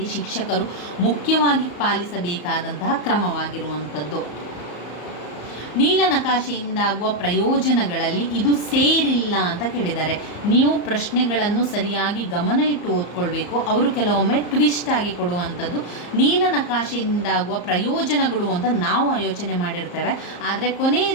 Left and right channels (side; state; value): right; late; 34 ms